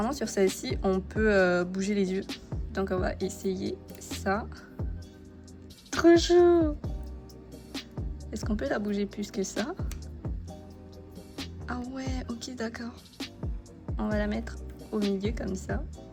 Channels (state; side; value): identical; both; correlation 1.00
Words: sur celle-ci, on peut bouger les yeux. Donc, on va essayer ça. Trop chou! Est-ce qu'on peut la bouger plus que ça? Ah ouais, ok, d'accord. On va la mettre au milieu comme ça.